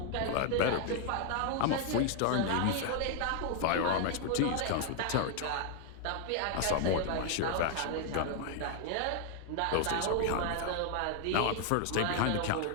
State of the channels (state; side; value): different; both; correlation 0.00